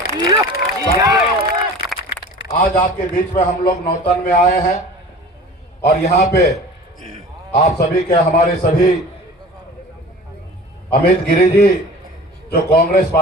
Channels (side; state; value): both; normal; correlation 0.41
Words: आज आपके बीच में हम लोग नौतन में आए हैं और यहाँ पे आप सभी के हमारे सभी अमित गिरी जी जो कांग्रेस